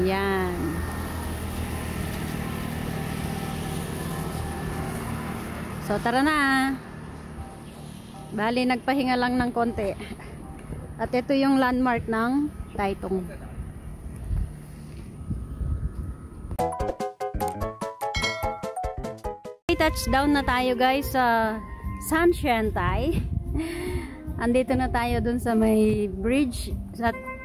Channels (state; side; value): identical; both; correlation 1.00